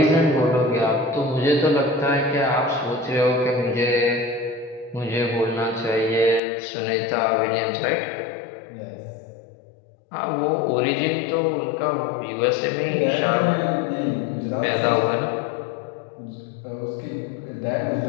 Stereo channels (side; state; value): right; drops out; at 6.4 s